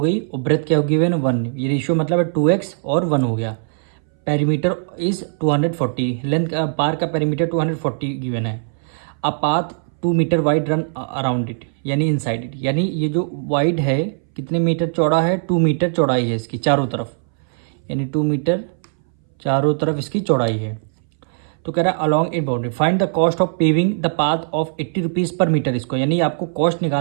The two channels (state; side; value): silent; left; 62 dB below the other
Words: गई और ब्रेथ क्या गिवन है 1। ये रेशियो मतलब है 2x और 1 हो गया। Perimeter is 240। लेंथ पार्क का पेरीमीटर 240 गिवन है। A path 2 metre wide run around it, यानी इनसाइड इट। यानी ये जो वाइड है कितने मीटर चौड़ा है, 2 मीटर चौड़ाई है इसकी चारों तरफ, यानी 2 मीटर चारों तरफ इसकी चौड़ाई है। तो कह रहा है along it boundary find the cost of paving the path of 80 rupees पर मीटर स्क्वायर। यानी आपको कॉस्ट